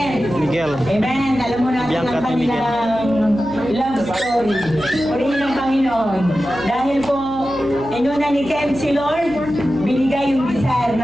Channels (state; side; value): noise; right; hum, 16 dB below the sound